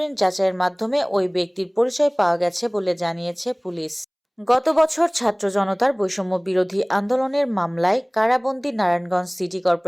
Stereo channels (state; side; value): identical; both; correlation 1.00